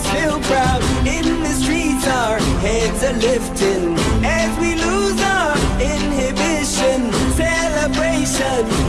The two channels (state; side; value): identical; both; correlation 1.00